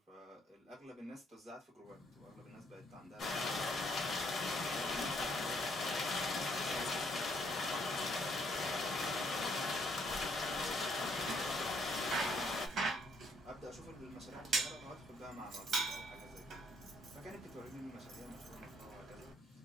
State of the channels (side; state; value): both; normal; correlation 0.68